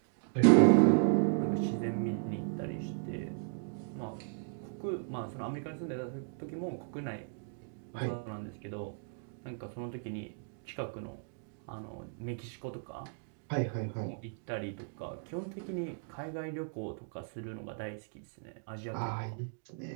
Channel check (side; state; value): left; silent; digital silence